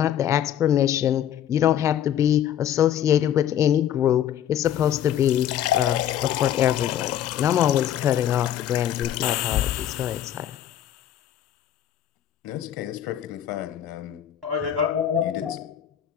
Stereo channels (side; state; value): right; quieter; 10.5 dB